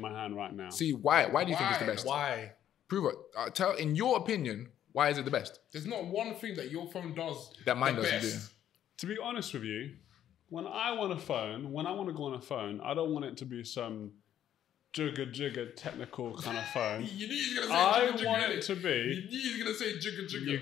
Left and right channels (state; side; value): quieter; right; 10.8 dB